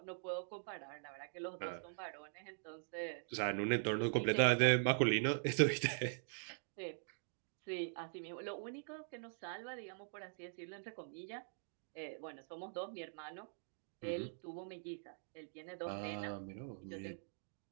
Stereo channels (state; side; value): silent; left; digital silence